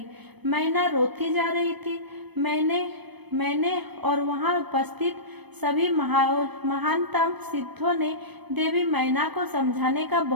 मैना रोती जा रही थी। मैंने और वहां उपस्थित सभी महानतम सिद्धों ने देवी मैना को समझाने का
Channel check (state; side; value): late; left; 0.99 ms